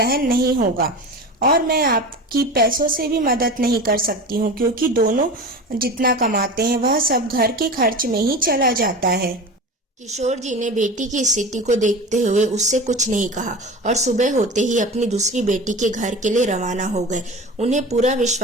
नहीं होगा। और मैं आपकी पैसों से भी मदद नहीं कर सकती हूँ क्योंकि दोनों जितना कमाते हैं वह सब घर के खर्च में ही चला जाता है। किशोर जी ने बेटी की स्थिति को देखते हुए उससे कुछ नहीं कहा और सुबह होते ही अपनी दूसरी बेटी के घर के लिए रवाना हो गए। उन्हें पूरा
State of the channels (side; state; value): both; normal; correlation 0.31